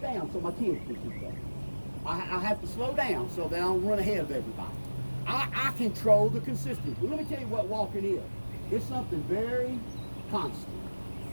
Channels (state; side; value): inverted; both; correlation -1.00